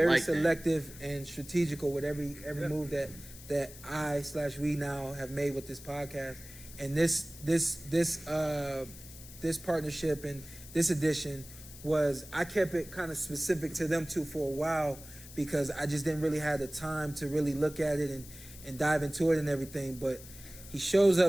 selective and strategical with every move that we now have made with this podcast, and this partnership and this edition was I kept it kind of specific to them two for a while because I just didn't really have the time to really look at it and dive into it and everything, but. He shows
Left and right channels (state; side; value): noise; left; hiss, 16 dB below the sound